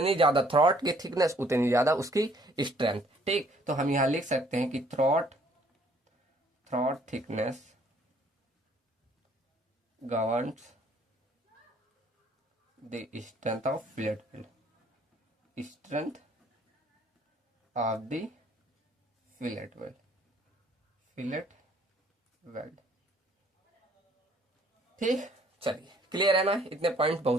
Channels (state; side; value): normal; both; correlation 0.61